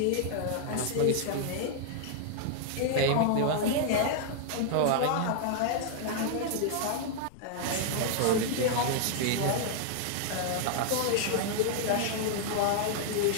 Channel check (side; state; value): both; different; correlation 0.00